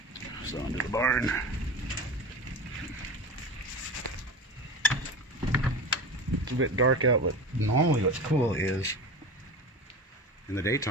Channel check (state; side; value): normal; both; correlation 0.29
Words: So under the barn. It's a bit dark out, but normally what's cool is in the